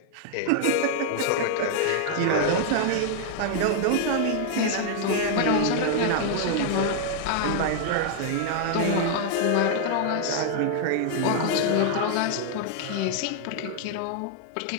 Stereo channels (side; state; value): both; different; correlation 0.00